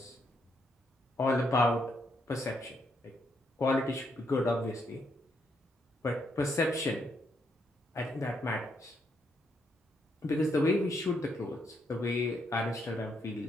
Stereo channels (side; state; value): both; normal; correlation 0.76